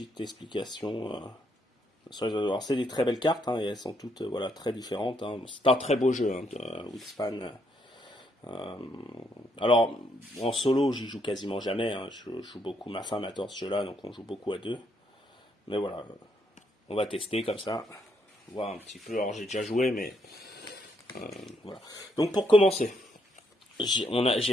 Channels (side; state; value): both; normal; correlation 0.75